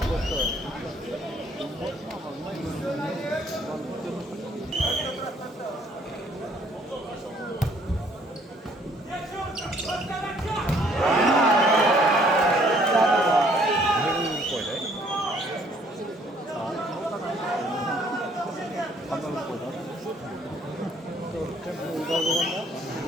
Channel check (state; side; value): normal; both; correlation 0.62